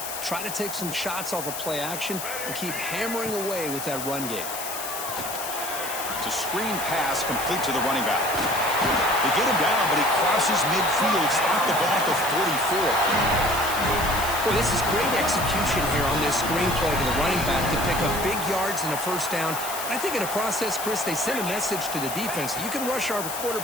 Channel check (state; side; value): noise; left; hiss, 7 dB below the sound